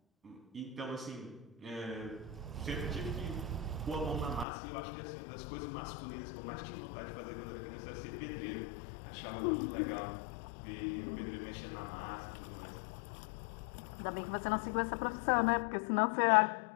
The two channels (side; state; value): right; drops out; at 4.5 s